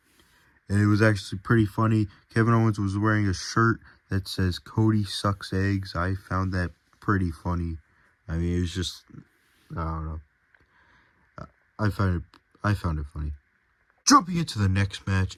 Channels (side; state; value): both; identical; correlation 1.00